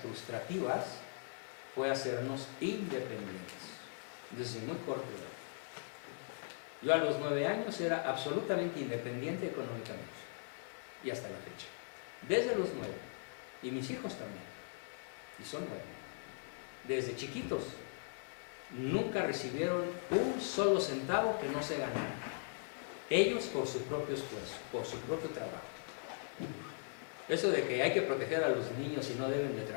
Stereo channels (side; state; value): right; silent; digital silence